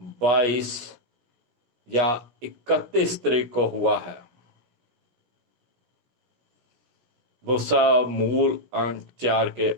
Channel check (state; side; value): late; left; 17 ms